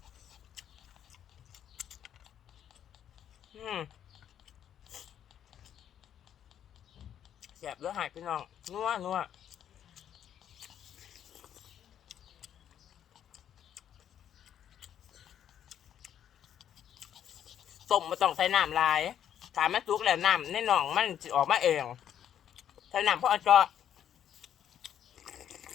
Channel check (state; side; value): quieter; right; 9.8 dB